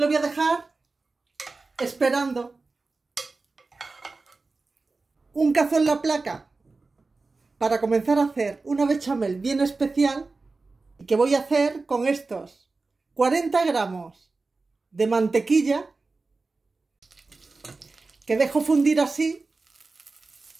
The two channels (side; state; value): left; quieter; 3.8 dB